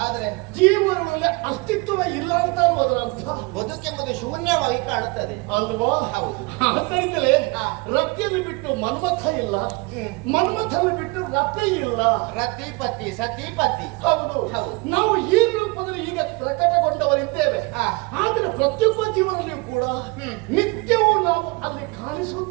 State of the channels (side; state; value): left; quieter; 27.0 dB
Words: ಆದ್ರೆ ಜೀವನದಲ್ಲಿ ಅಸ್ತಿತ್ವ ಇಲ್ಲ ಅಂತ ಅದರ ಅರ್ಥ. ಬದುಕೆಂಬುದು ಶೂನ್ಯವಾಗಿ ಕಾಣುತ್ತದೆ ಅಲ್ವಾ? ಹೌದು. ಅದರಿಂದಲೇ ರತಿಯನ್ನು ಬಿಟ್ಟು ಮನ್ಮಥ ಇಲ್ಲ, ಮನ್ಮಥನ್ನು ಬಿಟ್ಟು ರತಿ ಇಲ್ಲ. ರತಿ ಪತಿ ಸತಿ ಪತಿ. ಹೌದು. ನಾವು ಈ ರೂಪದಲ್ಲಿ ಈಗ ಪ್ರಕಟಗೊಂಡವರಿದ್ದೇವೆ. ಆದ್ರೆ ಪ್ರತಿಯೊಬ್ಬ ಜೀವನದಲ್ಲಿಯೂ ಕೂಡ ನಿತ್ಯವೂ ನಾವು ಅಲ್ಲಿ